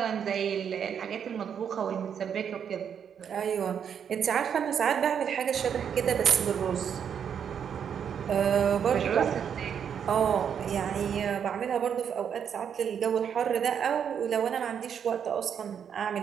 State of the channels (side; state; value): left; quieter; 7.9 dB